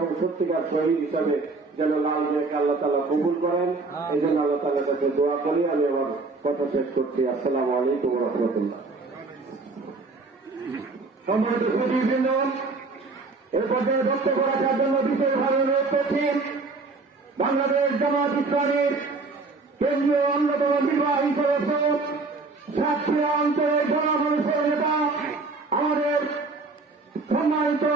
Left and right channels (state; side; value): quieter; left; 3.8 dB